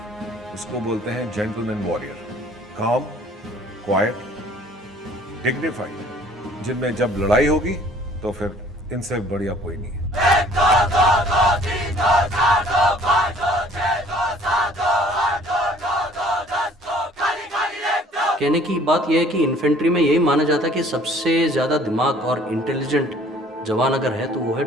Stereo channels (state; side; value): normal; both; correlation 0.55